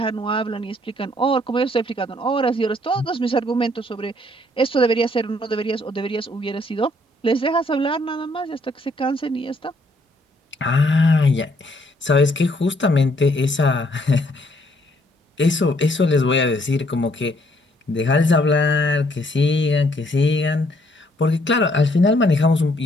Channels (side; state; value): both; normal; correlation 0.67